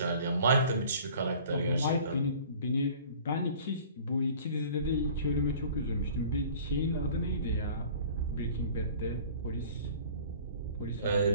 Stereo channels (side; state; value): both; inverted; correlation -0.47